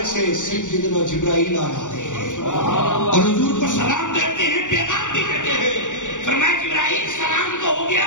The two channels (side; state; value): right; late; 0.86 ms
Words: سے سیدنا جبرائیل آ جاتے ہیں اور حضور کو سلام دیتے ہیں، پیغام بھی دیتے ہیں. فرمایا جبرائیل سلام تو ہو گیا،